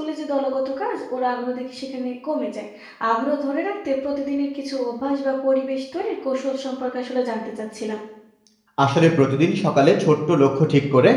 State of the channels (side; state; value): both; identical; correlation 1.00